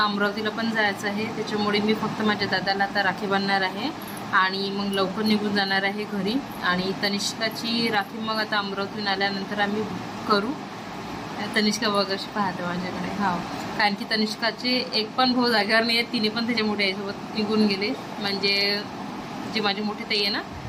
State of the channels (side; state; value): both; identical; correlation 1.00